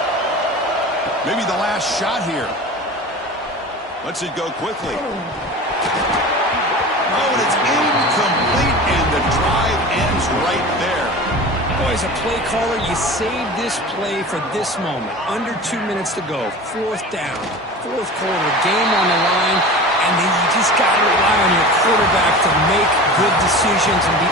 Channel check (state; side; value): normal; both; correlation 0.35